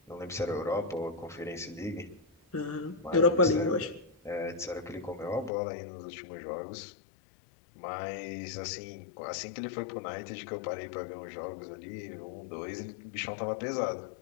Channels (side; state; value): right; drops out; at 5.5 s